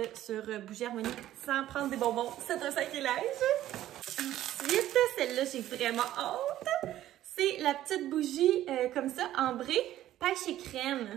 sur Bougie Harmonie sans prendre des bonbons, c'est un sacrilège. Ensuite, celle-là, j'ai vraiment hâte. C'est la petite bougie comme ça, ambrée, pêche et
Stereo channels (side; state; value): left; quieter; 13.3 dB